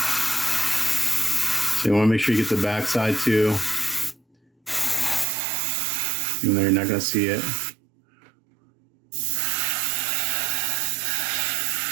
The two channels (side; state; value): left; drops out; at 5.2 s